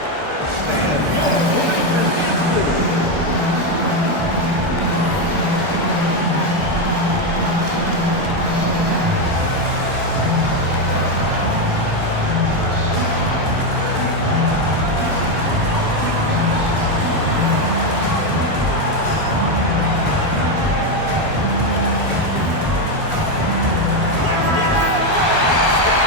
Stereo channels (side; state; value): left; late; 1.4 ms